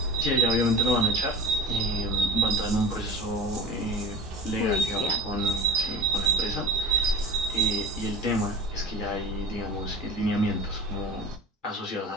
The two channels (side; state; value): both; normal; correlation 0.36